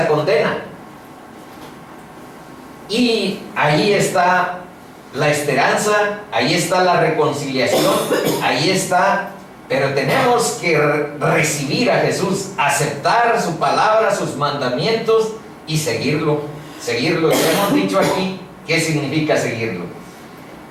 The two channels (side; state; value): both; identical; correlation 1.00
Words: condena. Y ahí está la esperanza, ahí está la reconciliación, ahí está. Pero tenemos que recibir a Jesús, aceptar su palabra, sus mandamientos y seguirlo. Seguirlo. Ya hemos dicho aquí qué significa seguirlo.